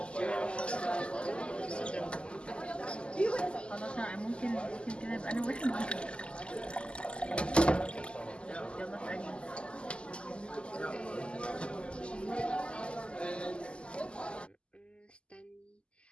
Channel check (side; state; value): right; late; 0.051 ms